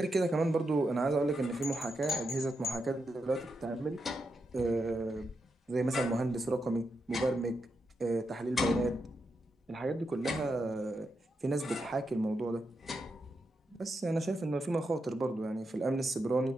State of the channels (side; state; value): both; normal; correlation 0.85